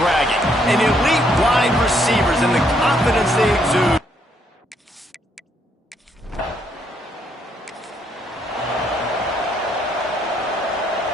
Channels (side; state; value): both; normal; correlation 0.72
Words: An elite wide receivers and the confidence they exude.